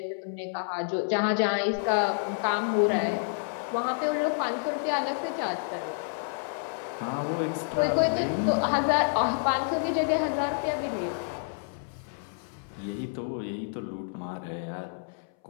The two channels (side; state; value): right; silent; 59 dB below the other